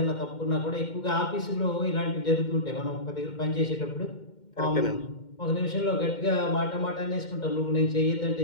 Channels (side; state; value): right; late; 2.1 ms